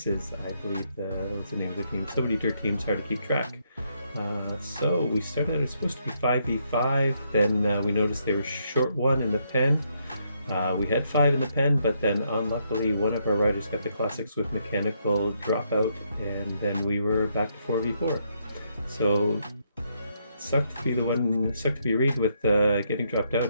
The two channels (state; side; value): inverted; both; correlation -0.75